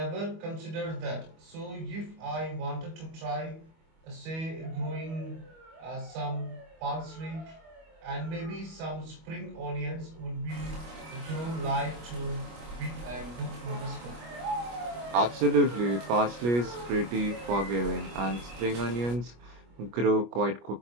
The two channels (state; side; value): late; left; 25 ms